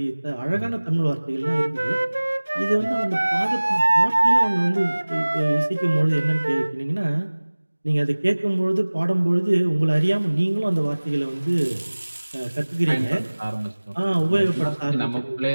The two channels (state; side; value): inverted; both; correlation -1.00